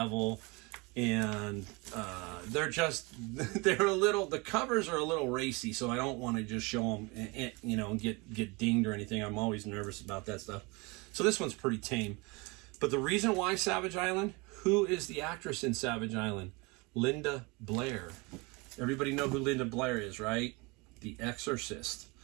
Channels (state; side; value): quieter; left; 27.1 dB